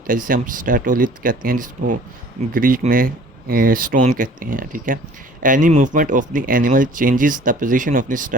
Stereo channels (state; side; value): normal; both; correlation 0.50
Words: है जिसे हम स्टैटोलिथ कहते हैं, जिसको ग्रीक में स्टोन कहते हैं। ठीक है, any movement of the animal changes the position of the